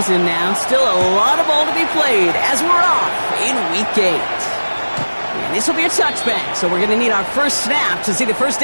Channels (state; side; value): inverted; both; correlation -1.00